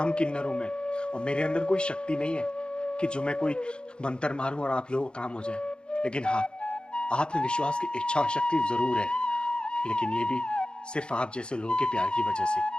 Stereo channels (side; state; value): right; late; 0.052 ms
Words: किन्नर हूँ मैं, और मेरे अंदर कोई शक्ति नहीं है कि जो मैं कोई मंत्र मारूं और आप लोगों को काम हो जाए। लेकिन हाँ, आप में विश्वास की इच्छा शक्ति जरूर है, लेकिन ये भी सिर्फ आप जैसे लोगों के प्यार की वजह से,